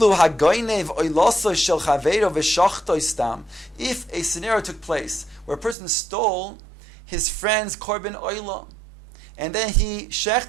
hagoynev oiloso shel chaveiro v'shachto stam. If a scenario took place where a person stole his friend's korban oila, and then he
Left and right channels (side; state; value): left; drops out; at 5.8 s